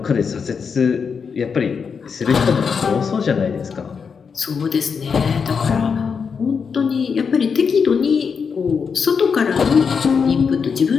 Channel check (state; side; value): quieter; right; 6.0 dB